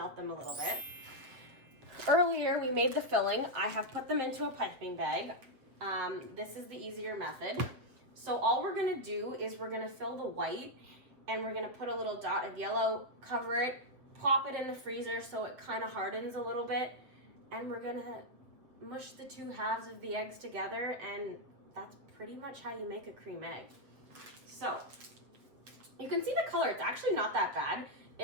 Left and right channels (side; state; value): left; late; 7.4 ms